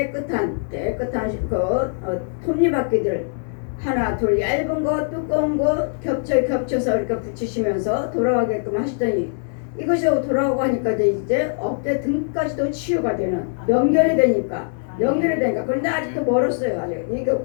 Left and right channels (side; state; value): right; silent; 61 dB below the other